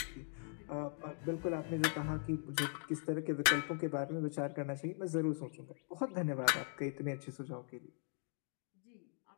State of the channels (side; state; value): right; silent; 51 dB below the other